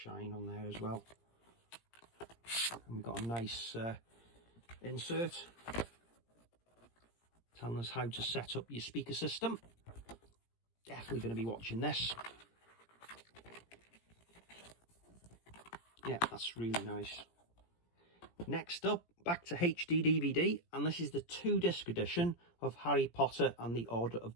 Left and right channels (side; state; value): right; late; 17 ms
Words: on there as well. And we've got a nice insert telling us how to set up your speaker system. Definitely going to be watching this. Yeah, that's really nice. Next up, back to HD DVD, and this is the 2-disc edition of Harry Potter and the Order of